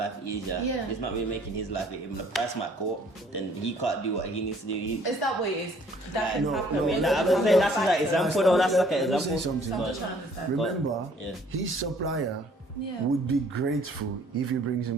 easier. Yeah. He's not really making his life. Even the price might go up, then he can't do what he needs to do. Is that what it is? That can happen. I'm saying that's like an example, though. That's like an example. Remember, his supplier would be grateful if he brings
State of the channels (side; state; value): both; normal; correlation 0.59